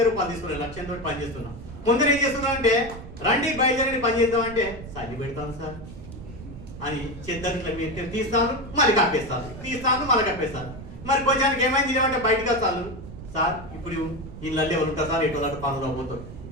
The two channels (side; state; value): right; noise; rumble, 13 dB below the sound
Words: రూపాయలు తీసుకున్నాను. లక్ష్యంతో పని చేస్తున్నా. కొందరు ఏం చేస్తున్నా అంటే రండి బయలుదేరండి పని చేద్దామంటే సల్లి పెడతాను సార్ అని చెద్దరిట్లా మీరు తీస్తాను మళ్ళీ కప్పేస్తాను, తీస్తాను మళ్ళీ కప్పేస్తాను. మరి కొంచెం ఏమైంది ఏమంటే బయటకు వస్తాను సార్ ఇప్పుడు ఇళ్ళల్లో ఎవరు ఉంటారు సార్ ఎటు అటు పనులు పోతారు